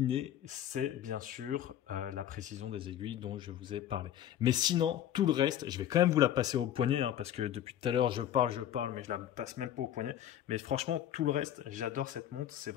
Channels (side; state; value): right; quieter; 10.9 dB